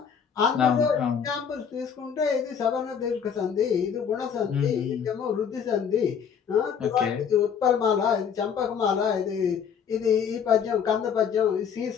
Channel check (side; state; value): right; quieter; 7.3 dB